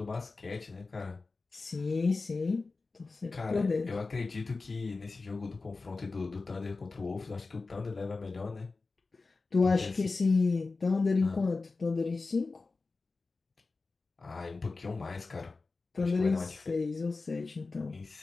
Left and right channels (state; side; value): quieter; right; 3.9 dB